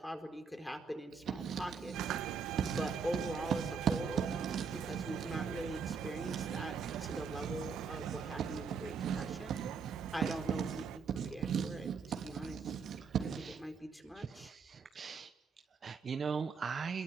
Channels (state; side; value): quieter; left; 5.6 dB